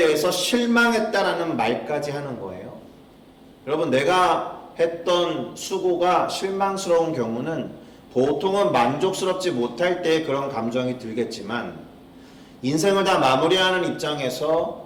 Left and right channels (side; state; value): both; identical; correlation 1.00